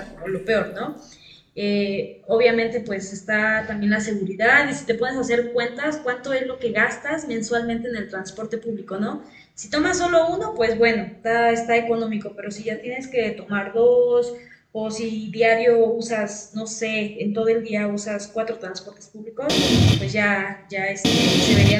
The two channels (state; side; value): identical; both; correlation 1.00